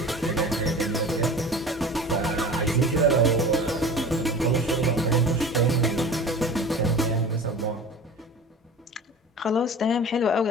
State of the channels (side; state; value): both; normal; correlation 0.38